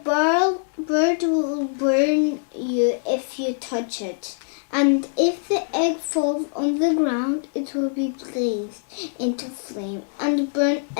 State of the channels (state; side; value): silent; right; digital silence